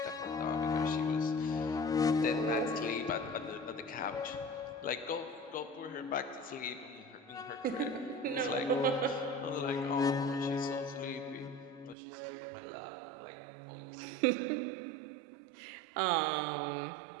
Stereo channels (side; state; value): left; drops out; at 12.0 s